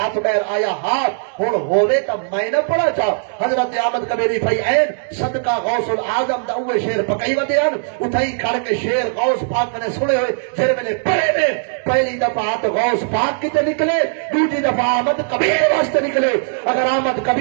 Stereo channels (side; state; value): left; silent; digital silence